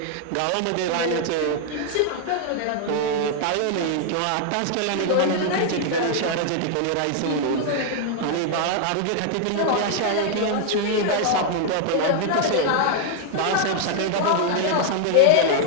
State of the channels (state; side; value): different; both; correlation 0.00